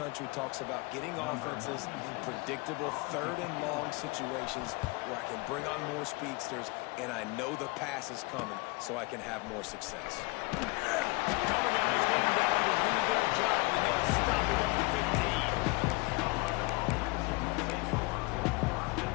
talks about getting offenses in predictable third and long situations where I can bring on more speedsters and I know the pass is coming so I can have more success. Cover guys getting down to do their job, and they'll stop it at the 15.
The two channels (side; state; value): right; quieter; 26.2 dB